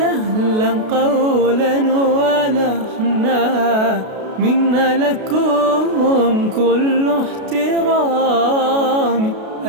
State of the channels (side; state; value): left; late; 32 ms